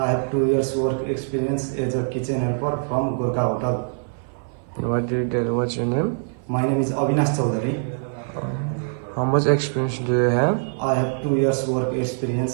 have 2 years work experience as a kitchen helper from Gorkha Hotel. What's your name? My name is Avinash Chaudhary. How much experience do you have? I have 2 years work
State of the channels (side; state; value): left; silent; 56 dB below the other